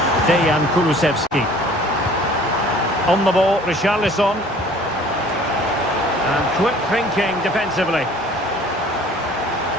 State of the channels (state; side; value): normal; both; correlation 0.51